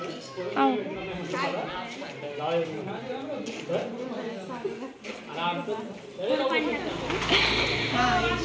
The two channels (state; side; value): identical; both; correlation 1.00